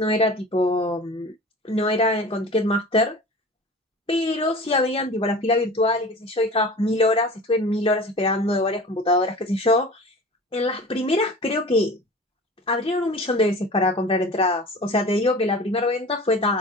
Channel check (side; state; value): both; normal; correlation 0.38